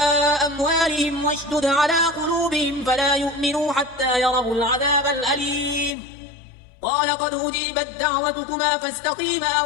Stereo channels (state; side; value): drops out; right; at 6.0 s